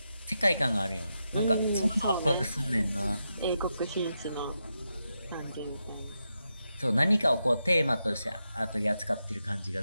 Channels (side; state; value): both; inverted; correlation -0.86